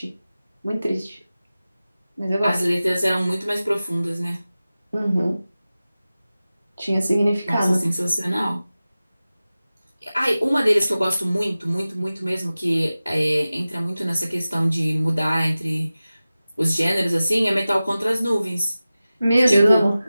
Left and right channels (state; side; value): inverted; both; correlation -0.96